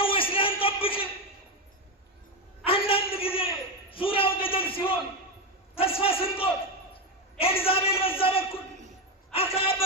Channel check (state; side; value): normal; both; correlation 0.11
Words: ወይስ ሊያንጠብቅ? አንዳንድ ጊዜ ዙሪያው ገደል ሲሆን ተስፋ ስንቆት ኤልዛቤል በዛ በኩል፣ አክዓብ